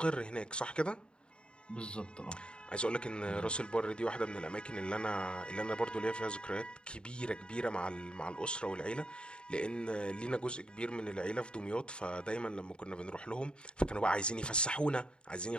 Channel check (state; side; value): late; right; 0.052 ms